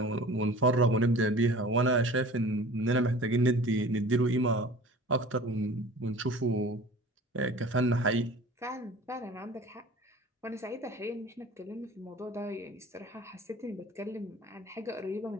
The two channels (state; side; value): normal; both; correlation 0.42